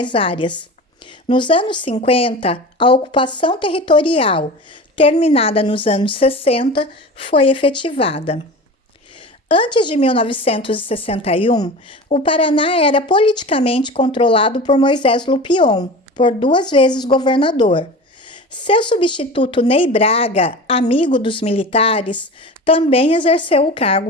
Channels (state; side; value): normal; both; correlation 0.33